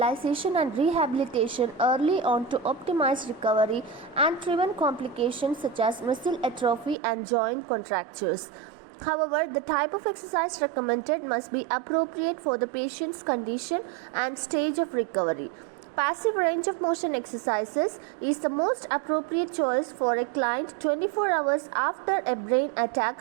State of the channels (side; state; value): left; drops out; at 7.0 s